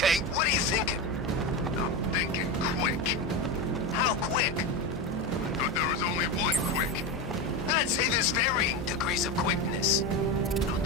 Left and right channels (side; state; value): both; normal; correlation 0.18